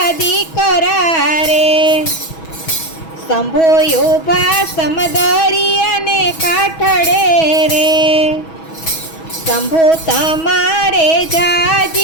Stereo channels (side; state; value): right; late; 6.2 ms